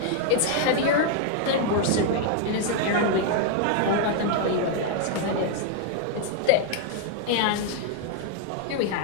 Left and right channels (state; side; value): different; both; correlation 0.00